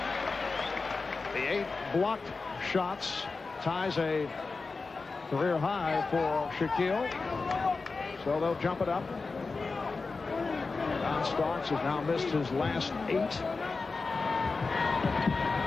The 8 blocked shots ties a career high for Shaquille. So they'll jump it up. John Starks has now missed his last 8.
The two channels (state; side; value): quieter; right; 4.1 dB